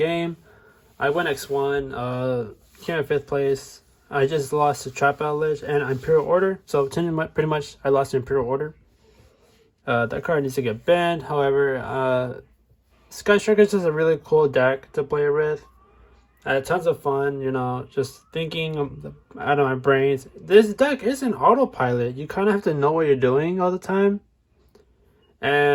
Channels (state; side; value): identical; both; correlation 1.00